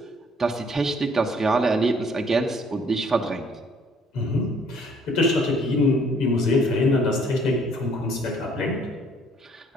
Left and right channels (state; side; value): normal; both; correlation 0.61